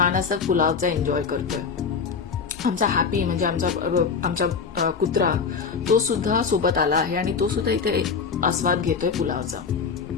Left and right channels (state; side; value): quieter; right; 5.7 dB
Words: असं पुलावचा एन्जॉय करतोय. आमचा हॅपी म्हणजे आमचा कुत्रा तो सुद्धा सोबत आला आहे आणि तो सुद्धा इथे आस्वाद घेतोय पुलावचा.